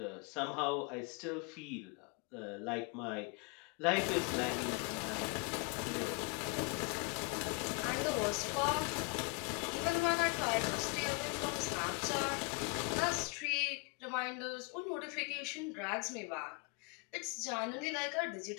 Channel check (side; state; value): right; quieter; 31.3 dB